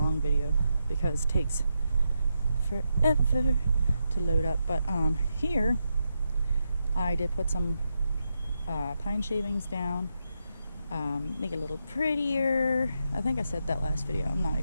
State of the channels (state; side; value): inverted; both; correlation -0.84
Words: video because it takes forever to load up. But here I did put some pine shavings down, make it a little prettier. I think I said that last video, I'm not